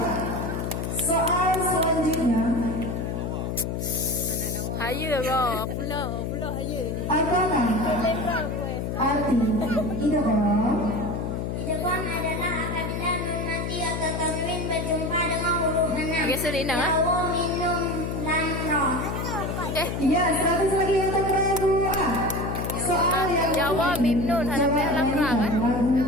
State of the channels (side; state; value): left; noise; hum, 3 dB below the sound